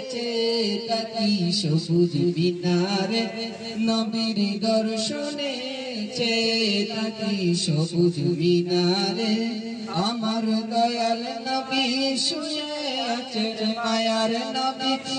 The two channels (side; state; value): both; identical; correlation 1.00